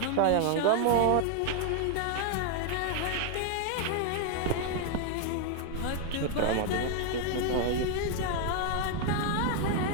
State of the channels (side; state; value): both; different; correlation 0.00